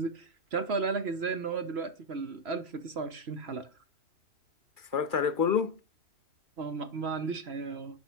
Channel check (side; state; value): left; late; 3.0 ms